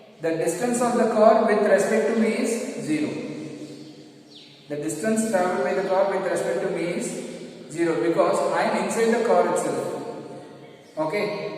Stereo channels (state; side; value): identical; both; correlation 1.00